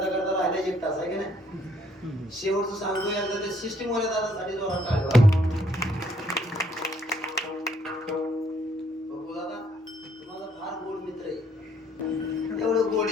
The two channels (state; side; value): normal; both; correlation 0.67